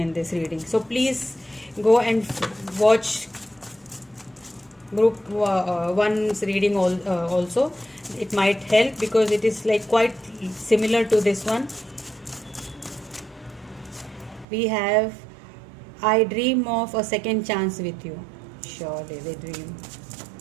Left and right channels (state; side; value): drops out; left; at 14.5 s